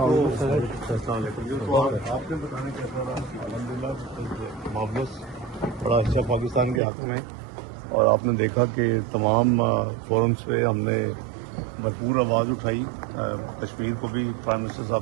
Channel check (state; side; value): drops out; left; at 6.8 s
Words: علیکم. آپ نے بتانا کیسا رہا؟ الحمدللہ معاملہ بڑا اچھا پاکستان کے حق میں, اور آپ نے دیکھا کہ تمام فورمز پہ ہم نے بھرپور آواز اٹھائی. کشمیر کو بھی پرائم منسٹر